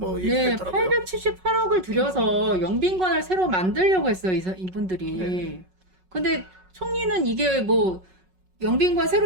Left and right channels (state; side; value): late; left; 5.4 ms